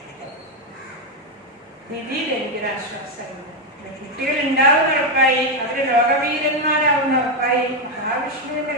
രീതിയിൽ എനിക്കൊരു ആശ്വാസമുണ്ട്. കുട്ടികൾ ഉണ്ടാവുന്ന ഉറപ്പായി, അവര് ലോകവീരന്മാരാവുന്ന ഉറപ്പായി. മഹാവിഷ്ണുവിന്റെ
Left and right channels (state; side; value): normal; both; correlation 0.05